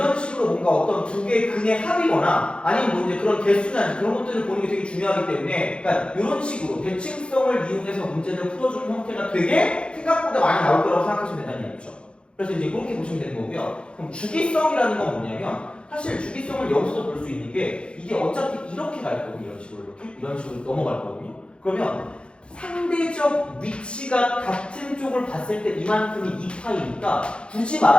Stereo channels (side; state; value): right; late; 0.056 ms